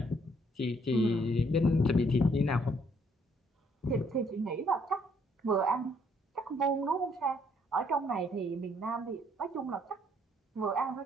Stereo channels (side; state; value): both; normal; correlation 0.67